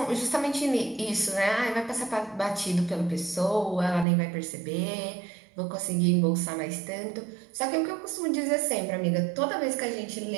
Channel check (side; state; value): left; drops out; at 4.0 s